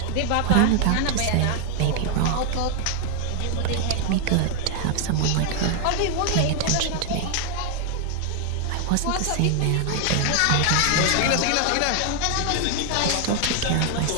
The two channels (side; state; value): both; different; correlation 0.00